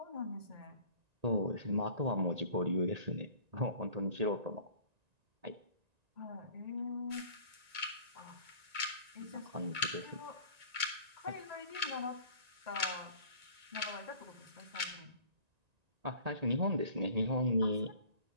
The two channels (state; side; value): late; left; 1.9 ms